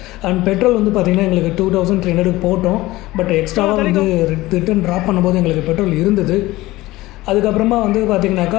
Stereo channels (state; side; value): quieter; right; 18.4 dB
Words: அண்ட் பெட்ரோல் வந்து பார்த்திங்கன்னா எங்களுக்கு 2300 போட்டோம். பட் எக்ஸ்ட்ராவாக வந்து ரிட்டன் ட்ராப் பண்ணும்போது எங்களுக்கு பெட்ரோல் இருந்தது. அதுக்கப்புறமா வந்து